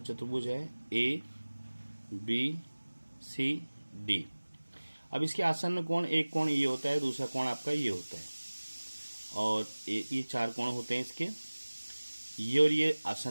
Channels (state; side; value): inverted; both; correlation -1.00